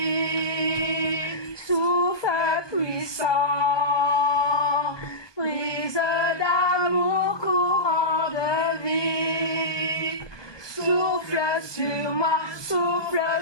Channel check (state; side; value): late; right; 1.2 ms